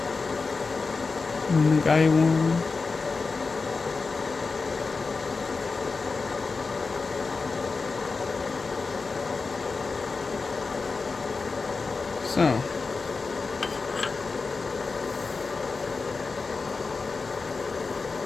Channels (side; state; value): right; quieter; 4.3 dB